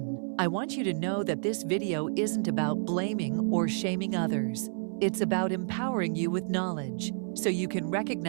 I want you to know that this video isn't about blaming or shaming others. It's about empowering you with knowledge so you can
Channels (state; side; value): silent; left; 58 dB below the other